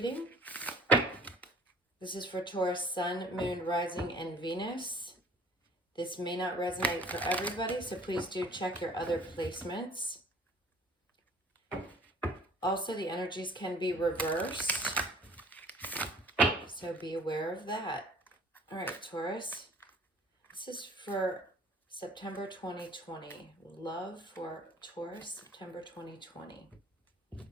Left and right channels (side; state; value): both; normal; correlation 0.52